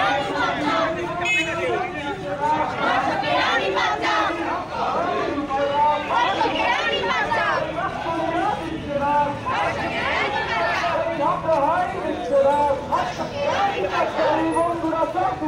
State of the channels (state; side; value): identical; both; correlation 1.00